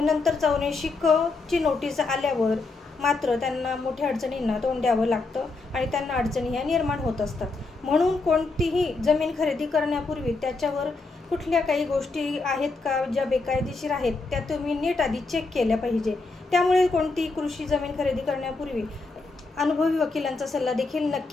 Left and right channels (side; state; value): right; quieter; 3.7 dB